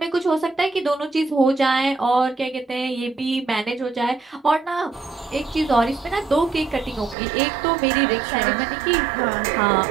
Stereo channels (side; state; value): left; drops out; at 7.2 s